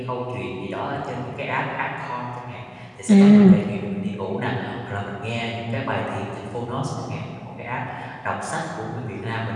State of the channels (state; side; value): identical; both; correlation 1.00